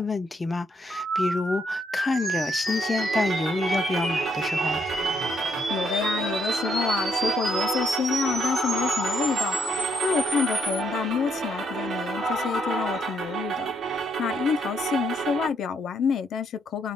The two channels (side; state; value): both; normal; correlation 0.73